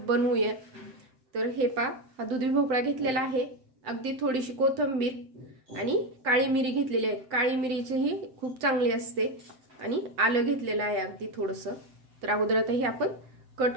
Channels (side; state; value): left; late; 7.7 ms